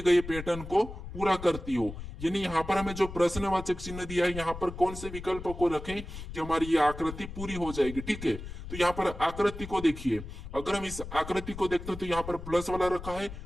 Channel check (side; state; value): left; noise; rumble, 11 dB below the sound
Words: गए पैटर्न को पूरा करती हो। यानी यहाँ पर हमें जो प्रश्नवाचक चिन्ह दिया है, यहाँ पर कौन से विकल्प को रखें कि हमारी ये आकृति पूरी हो जाएगी, ठीक है। तो यहाँ पर आकृति को देखिए, अगर हम इस आकृति को देखते हैं तो यहाँ पर प्लस वाला रखा है,